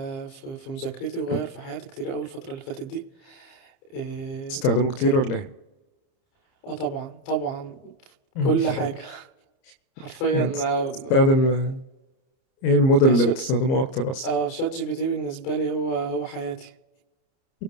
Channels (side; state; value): right; late; 30 ms